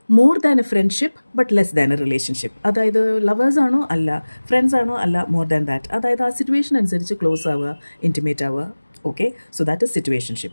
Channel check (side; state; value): both; inverted; correlation -1.00